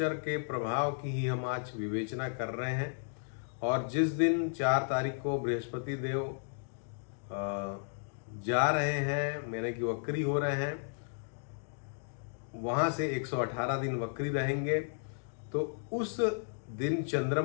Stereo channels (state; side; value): silent; right; digital silence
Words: के प्रभाव की ही हम आज विवेचना कर रहे हैं और जिस दिन 4 तारीख को बृहस्पति देव जा रहे हैं, मैंने कि वक्री हो रहे हैं, वहाँ से 118 दिन वक्री रहेंगे। तो उस दिन